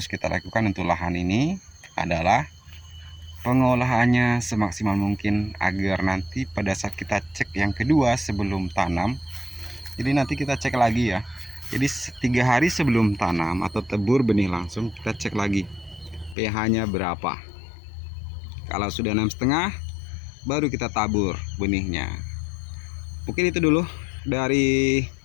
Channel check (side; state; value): right; drops out; at 16.4 s